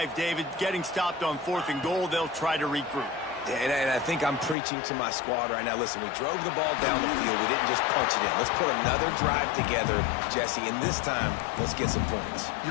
David. Getting stopped on 4th and goal, they'll try to regroup. And I think I'm preaching to my squad right now. Listen, we drove the ball down the field. We didn't just punch it in. Let's put another drive together, Jesse, and this time, let's get some points.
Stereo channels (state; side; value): drops out; right; at 4.5 s